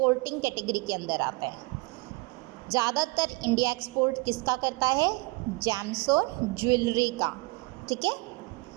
कैटेगरी के अंदर आता है। ज़्यादातर इंडिया एक्सपोर्ट किसका करता है, जेम्स और ज्वेलरी का, ठीक है।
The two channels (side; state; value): left; quieter; 26.0 dB